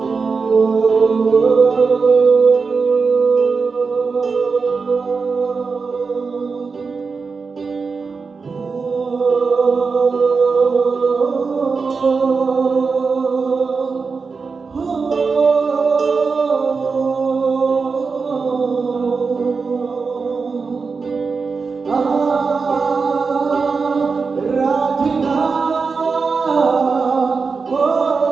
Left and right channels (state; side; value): quieter; left; 4.8 dB